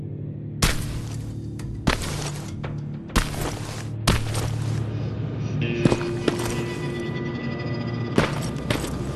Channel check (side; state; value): both; identical; correlation 1.00